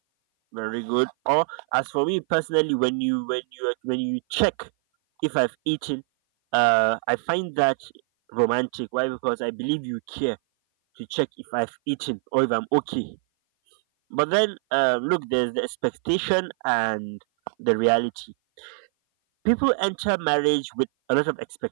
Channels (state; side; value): silent; left; 56 dB below the other